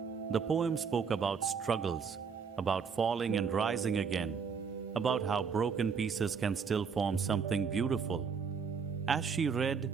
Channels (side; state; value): left; quieter; 6.0 dB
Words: The poem spoke about struggles, about falling and rising again, about how broken pieces can still form something beautiful. As she read,